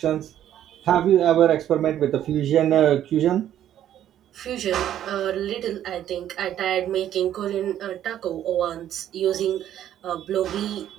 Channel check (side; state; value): left; quieter; 11.2 dB